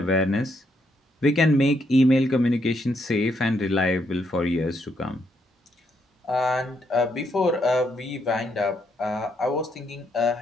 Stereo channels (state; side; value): normal; both; correlation 0.76